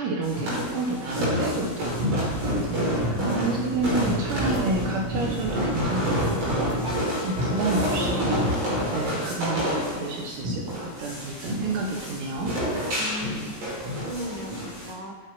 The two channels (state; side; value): late; left; 17 ms